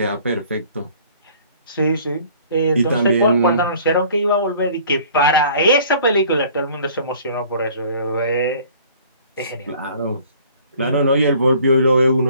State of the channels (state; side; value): inverted; both; correlation -0.52